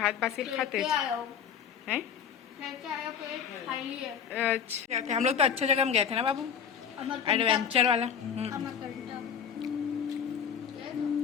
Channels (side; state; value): right; quieter; 7.7 dB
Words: बासिर खाते हैं। अच्छा हम लोग तो अच्छी जगह में गए थे ना बाबू, एडवेंचर वाला।